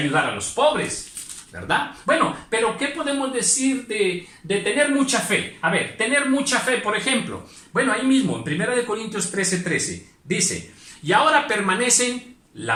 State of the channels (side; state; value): both; identical; correlation 1.00